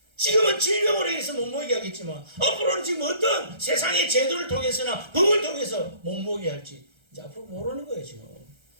지금은 질병으로 인해서 못 모이게 하겠지만 앞으로는 지금 어떤 세상의 제도를 통해서나 법을 통해서 못 모이게 할지 이제 앞으로 모르는 거예요 지금.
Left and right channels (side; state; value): left; late; 1.3 ms